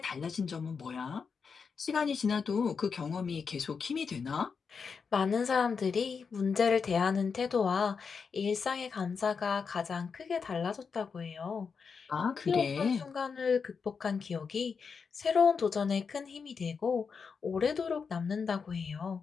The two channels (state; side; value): quieter; right; 5.6 dB